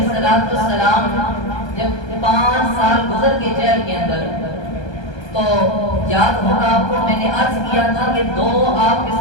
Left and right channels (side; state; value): right; late; 1.3 ms